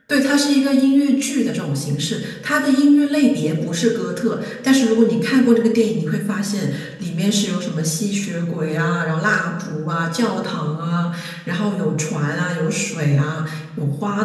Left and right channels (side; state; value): both; identical; correlation 1.00